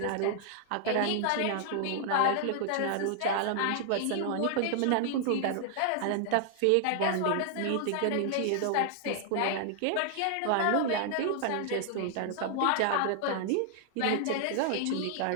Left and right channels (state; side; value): different; both; correlation 0.00